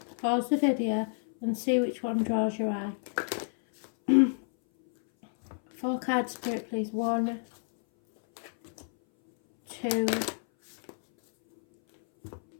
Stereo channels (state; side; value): silent; right; 58 dB below the other